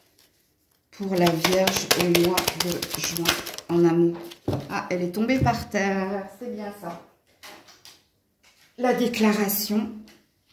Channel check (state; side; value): identical; both; correlation 1.00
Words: Pour la Vierge au mois de juin en amour. Ah, elle est tombée par terre, c'est bien ça. La déclaration.